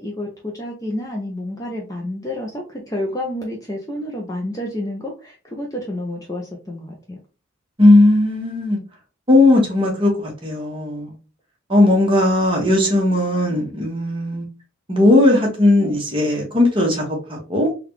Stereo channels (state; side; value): normal; both; correlation 0.72